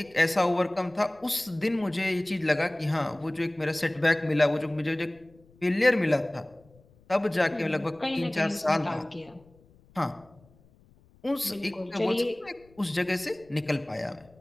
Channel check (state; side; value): noise; left; rumble, 29 dB below the sound